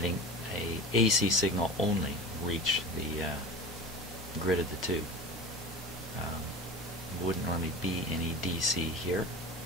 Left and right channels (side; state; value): both; normal; correlation 0.34